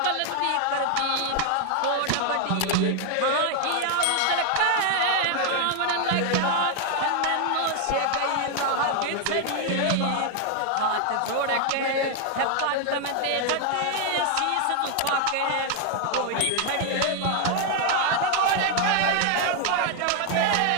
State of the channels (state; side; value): different; both; correlation 0.00